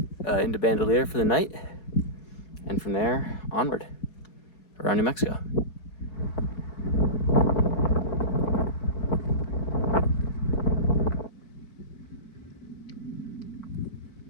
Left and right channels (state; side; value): late; right; 4.7 ms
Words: into Bandelier for the night. And from there, onward, around New Mexico.